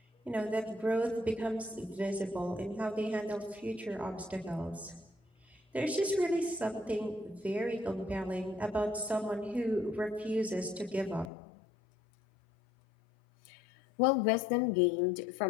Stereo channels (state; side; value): drops out; right; at 11.3 s